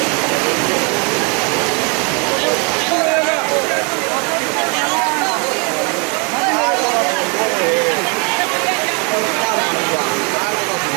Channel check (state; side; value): quieter; left; 33.9 dB